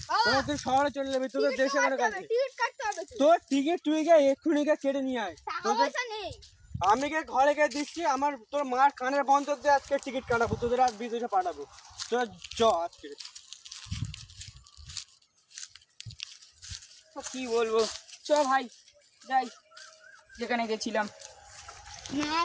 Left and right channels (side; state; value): both; identical; correlation 1.00